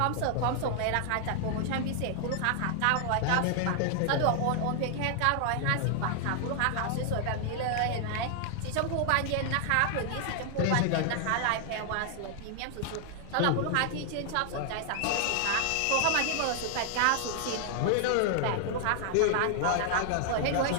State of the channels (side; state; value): both; different; correlation 0.00